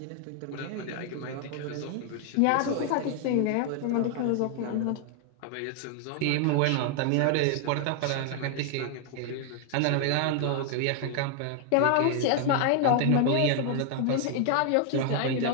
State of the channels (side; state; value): both; different; correlation 0.00